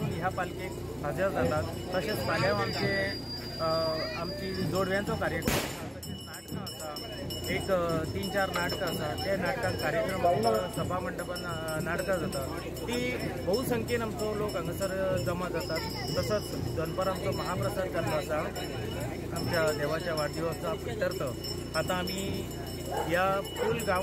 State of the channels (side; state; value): both; identical; correlation 1.00